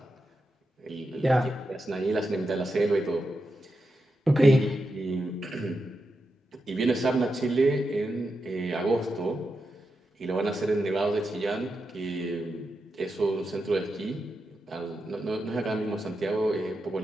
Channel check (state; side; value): normal; both; correlation 0.87